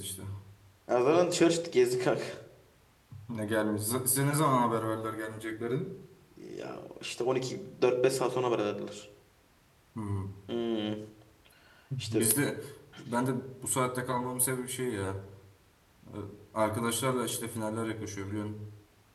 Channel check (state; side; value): identical; both; correlation 1.00